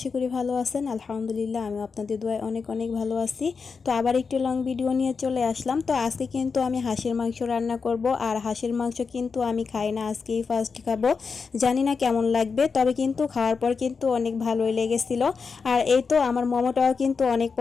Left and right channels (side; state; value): right; quieter; 5.2 dB